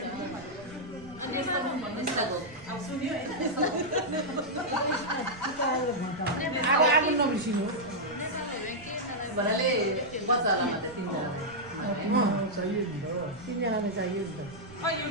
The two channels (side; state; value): right; noise; rumble, 20 dB below the sound